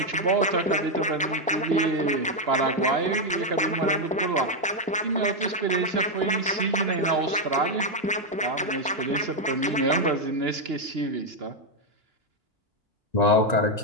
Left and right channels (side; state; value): both; normal; correlation 0.02